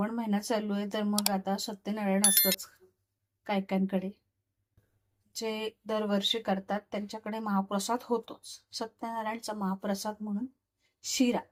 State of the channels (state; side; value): identical; both; correlation 1.00